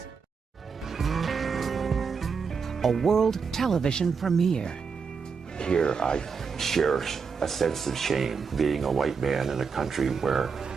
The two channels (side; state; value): left; quieter; 5.7 dB